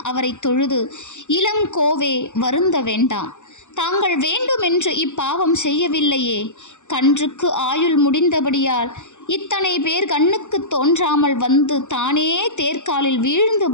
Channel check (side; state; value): right; late; 0.84 ms